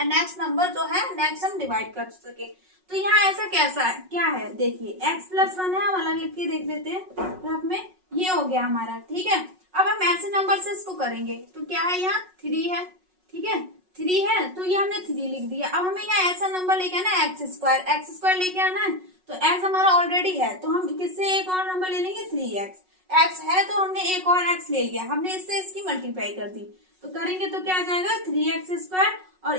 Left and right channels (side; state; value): left; late; 5.4 ms